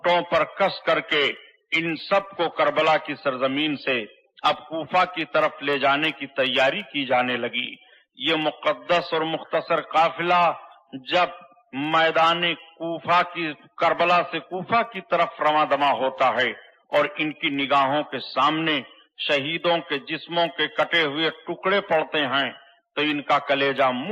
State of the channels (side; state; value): both; identical; correlation 1.00